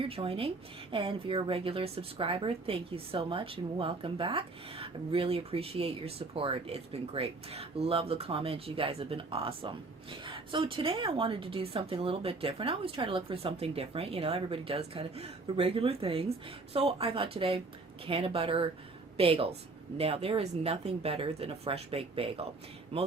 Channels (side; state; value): left; quieter; 3.6 dB